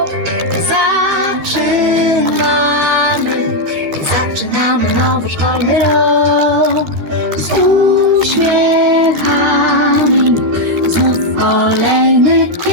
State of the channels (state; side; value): late; left; 12 ms